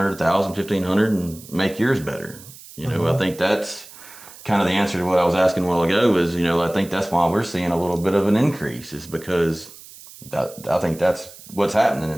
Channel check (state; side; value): noise; right; hiss, 19 dB below the sound